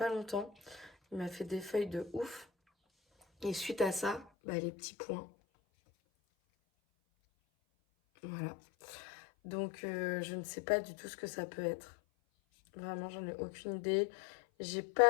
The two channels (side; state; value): right; drops out; at 4.2 s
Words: longtemps. Il m'a fait des feuilles de ouf. Et suite à ça, bah, les petits points. Voilà. Donc, je ne sais pas du tout ce que ça peut être. Vraiment, j'en ai aucune idée. J'ai